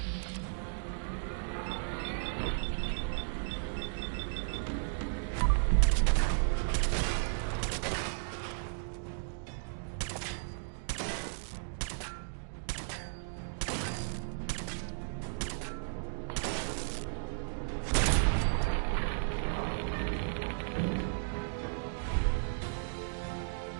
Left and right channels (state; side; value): silent; left; digital silence